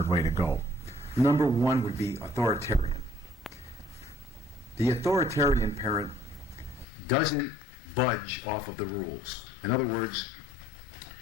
way to go. Number one would be authoritarian. The authoritarian parent doesn't budge off of the rules. In other words,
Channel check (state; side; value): drops out; right; at 6.9 s